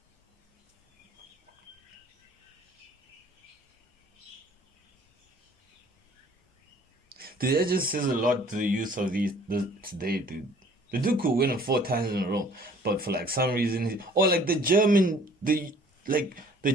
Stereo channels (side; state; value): both; normal; correlation 0.54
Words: Dude, that just says a lot to the youth of today, dude. The dude could win it 4 times in a row, but for like some reason, or like the German